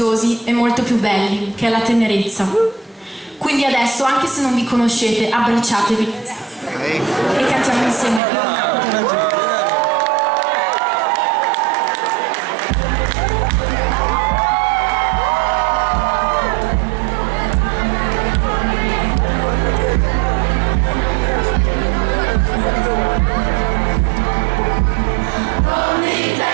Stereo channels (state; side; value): drops out; left; at 8.2 s